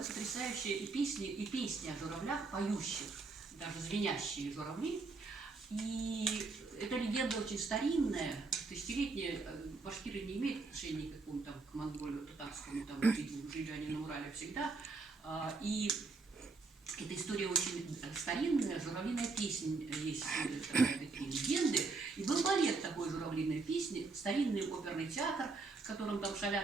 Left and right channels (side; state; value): left; quieter; 4.0 dB